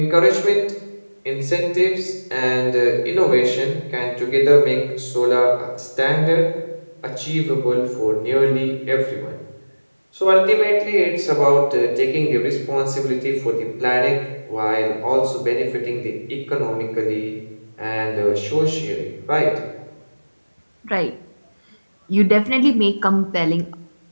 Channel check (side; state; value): both; inverted; correlation -1.00